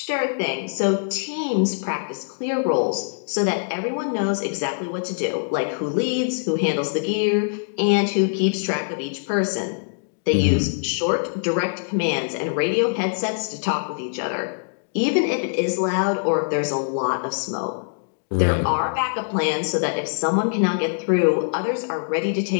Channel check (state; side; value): silent; right; digital silence